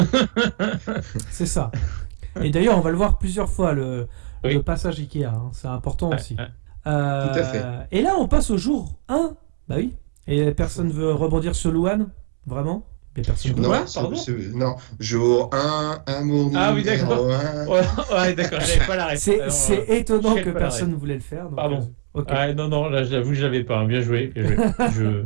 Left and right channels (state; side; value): silent; left; 65 dB below the other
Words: C'est ça. Et d'ailleurs, on va le voir plusieurs fois le passage Ikea. Hein. C'est important aussi. Tout à fait. Et là, on passe au jour 1. Bah oui. Et personne veut rebondir sur Luan, vraiment. Non, jour 1, amour. Ah oui, d'accord. Ouais, d'accord, j'avais pas la réponse. C'est étonnant que personne ne voulait le faire. Donc, pardon. Okay. Ah, non, là, j'avoue, je l'avais pas. Bien joué.